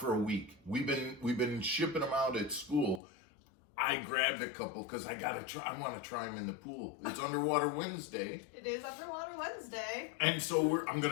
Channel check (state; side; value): drops out; right; at 3.0 s